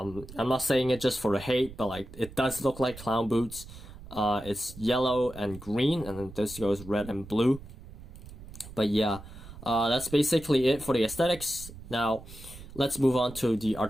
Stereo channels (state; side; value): noise; right; rumble, 16 dB below the sound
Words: not saying it just for the hate, but like it does look like clown boots. It's yellow and green, and then this goes red and blue. But yeah, that's basically it for the aesthetics. Now let's move on to the